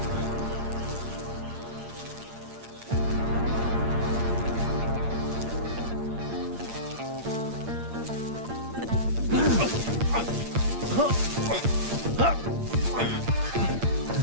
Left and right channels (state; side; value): late; left; 8.7 ms